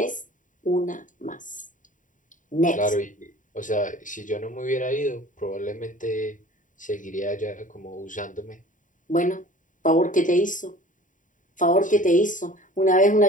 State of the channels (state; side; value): late; right; 0.38 ms